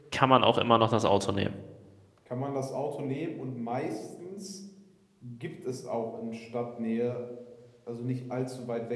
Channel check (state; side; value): identical; both; correlation 1.00